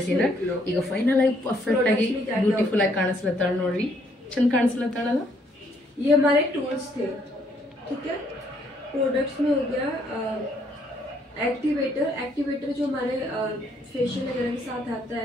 ಈಗ ಫೈನಲ್ ಆಗಿ ಪರ್ಫೆಕ್ಟ್ ಆಗಿ ಬ್ಯೂಟಿಫುಲ್ ಆಗಿ ಕಾಣಿಸ್ಲತ್ತಾಳ ನೋಡ್ರಿ ಚಂದ ಕಾಣಿಸ್ಲತ್ತಾಳಲ್ಲ ये हमारे टूल्स थे ठीक है प्रोडक्ट्स में हो गया एक्टिवेटर जो हमारे फेशियल वगैरह के साथ आता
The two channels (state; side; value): normal; both; correlation 0.69